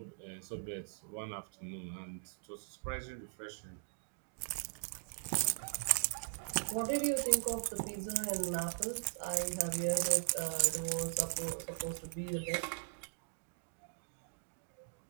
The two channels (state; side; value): silent; left; digital silence